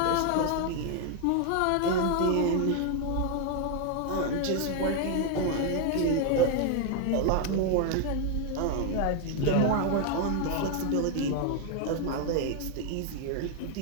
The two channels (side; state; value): both; different; correlation 0.00